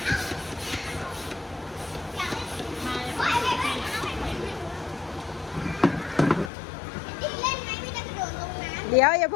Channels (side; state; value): right; drops out; at 6.5 s